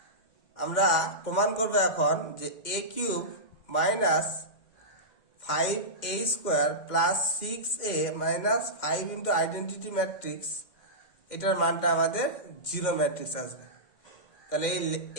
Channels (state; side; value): late; right; 2.4 ms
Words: আমরা প্রমাণ করবো এখন যে A cube minus 5a square plus 6a minus 5 into identity matrix, এটার মানটা আমাদের জিরো ম্যাট্রিক্স আসবে। তাহলে